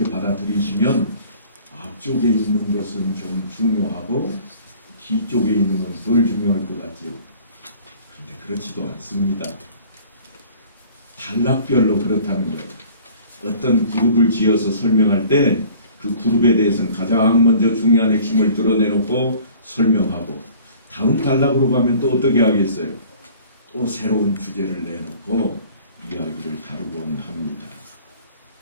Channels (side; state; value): both; inverted; correlation -0.50